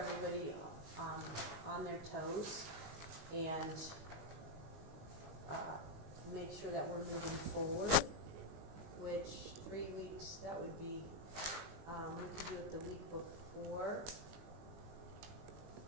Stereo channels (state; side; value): late; left; 19 ms